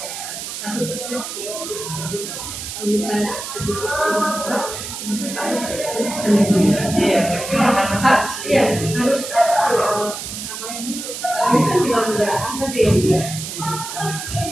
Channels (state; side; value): noise; right; hiss, 7 dB below the sound